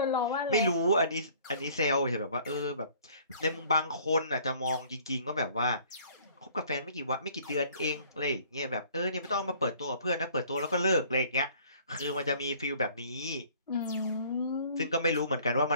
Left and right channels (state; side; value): inverted; both; correlation -0.54